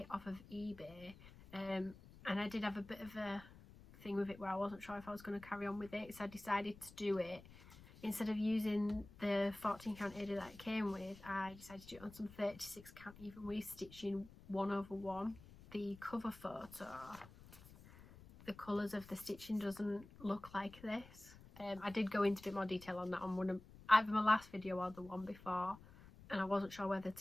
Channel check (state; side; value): noise; left; rumble, 19 dB below the sound